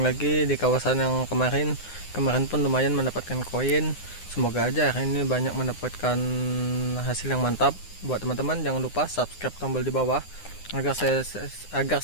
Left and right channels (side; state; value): right; late; 9.7 ms